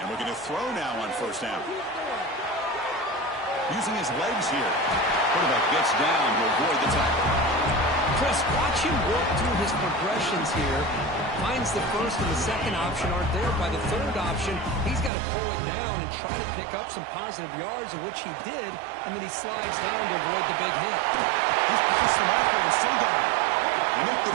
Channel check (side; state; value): left; drops out; at 15.1 s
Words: And we're going to throw now on first down. Using his legs here. Quarterback gets down to avoid the tackle. Chris, watch him work through his progressions here. Finds the first and the second option aren't there. By the third option, he's got to pull it down and try to pick up some positive yards, of which he did, and then he slides down to avoid the big hit. He's past the marker and still going. They make the